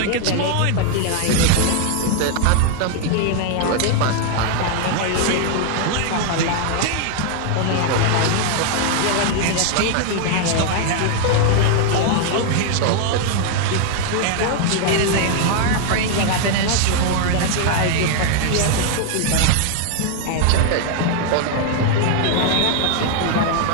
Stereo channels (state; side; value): different; both; correlation 0.00